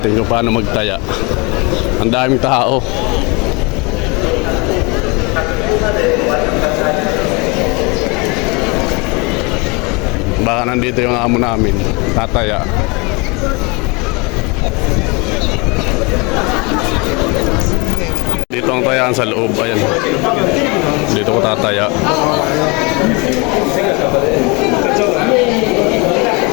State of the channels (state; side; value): quieter; right; 28.5 dB